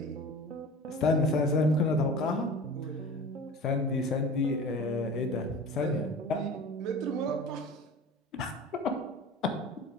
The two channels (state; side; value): normal; both; correlation 0.38